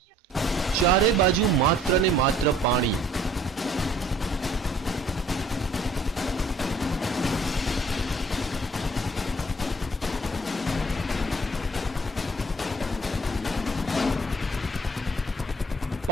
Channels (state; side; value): normal; both; correlation 0.58